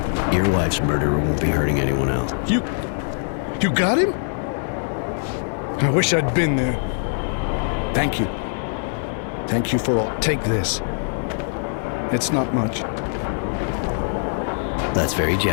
Your wife's murderer won't be hurting anyone else. You got him? I wish I'd been there. Thank you. Thank you for all. Take this. It's not much. That's very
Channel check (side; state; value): right; silent; digital silence